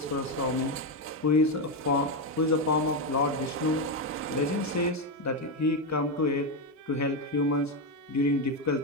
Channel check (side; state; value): both; normal; correlation 0.08